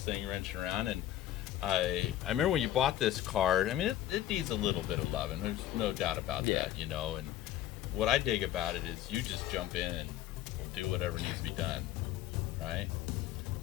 wrenching around, and I remember when you bought this car. I mean, it needs a little bit of loving. There's no doubt about that, you know. And what I dig about it is you just jump in and will do whatever needs to be done, right?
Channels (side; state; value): right; quieter; 12.8 dB